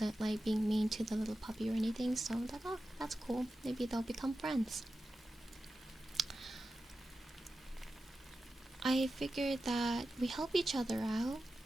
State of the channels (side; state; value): both; normal; correlation 0.92